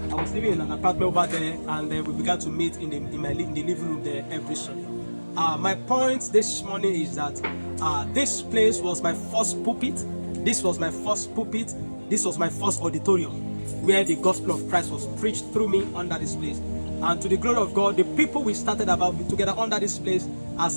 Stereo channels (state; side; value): inverted; both; correlation -1.00